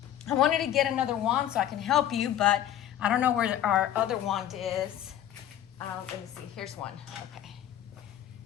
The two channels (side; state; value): right; quieter; 11.3 dB